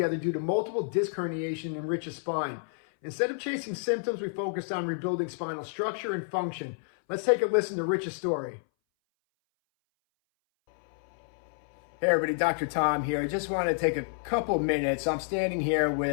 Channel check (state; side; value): silent; right; 58 dB below the other